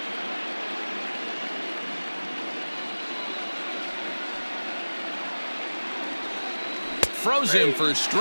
Froze him for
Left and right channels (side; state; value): both; inverted; correlation -1.00